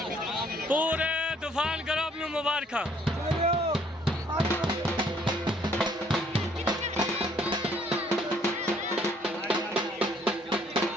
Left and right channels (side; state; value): both; normal; correlation 0.63